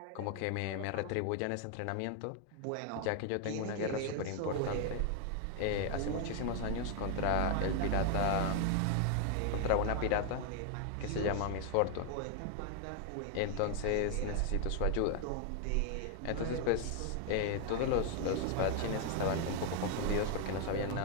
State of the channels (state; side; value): different; both; correlation 0.00